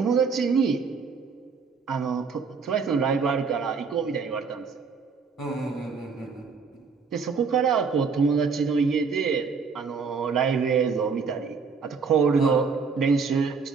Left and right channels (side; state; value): left; quieter; 5.3 dB